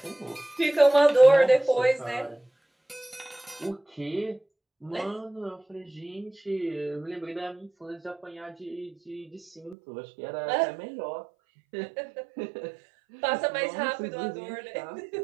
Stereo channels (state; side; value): drops out; left; at 9.8 s